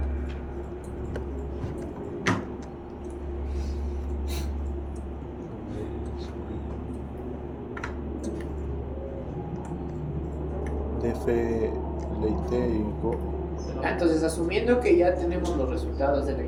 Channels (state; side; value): identical; both; correlation 1.00